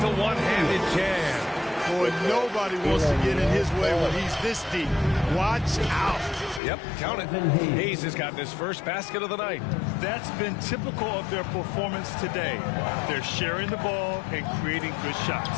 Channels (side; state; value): right; drops out; at 6.6 s